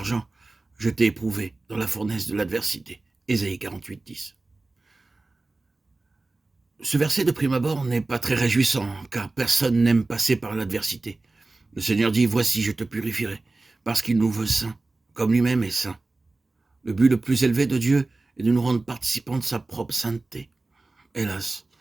Je t'ai éprouvé dans la fournaise de l'adversité. Ésaïe 48, 10. Ce verset de prime abord n'est pas très réjouissant, car personne n'aime passer par l'adversité. Le Seigneur dit, voici, je te purifierai, parce qu'il nous veut saints, comme lui-même est saint. Le but le plus élevé de Dieu est de nous rendre participants de sa propre sainteté. Hélas,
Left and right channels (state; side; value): quieter; left; 3.2 dB